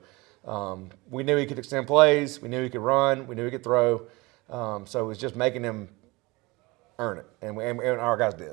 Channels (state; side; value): quieter; left; 23.7 dB